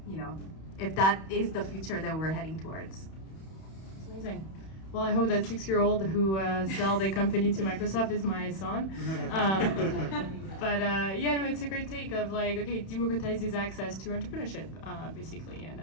that is the future that we're heading towards. Amazing. Well, I hope that 6-year-old who sell their company to Microsoft is my son. But yeah, no, it's a great take of like, okay, democratizes access to entrepreneurship, basically, and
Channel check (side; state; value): right; late; 31 ms